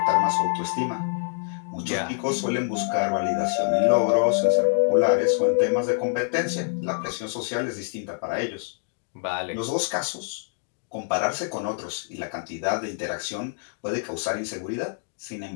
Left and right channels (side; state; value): right; silent; digital silence